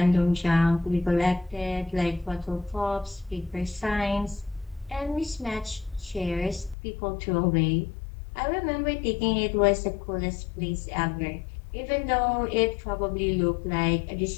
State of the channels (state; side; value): drops out; right; at 6.8 s